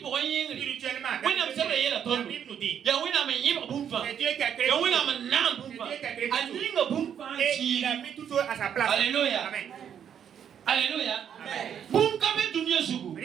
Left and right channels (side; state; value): left; quieter; 8.7 dB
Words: pour un ying. spirituellement, Oui, non, c'est vrai, il y a la la tonne. Bible nous dit, Ya wina me yiba bumfa. c'est Dieu qui a créé Ya tout. wina me nan bumfa. A yinga bumfa Et il a chi. mis tout ça à sa place. Alléluia. Amen. Alléluia. Amen. Bum kabe dunia sugu.